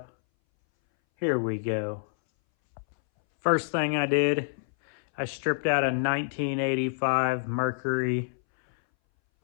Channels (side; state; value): right; silent; 60 dB below the other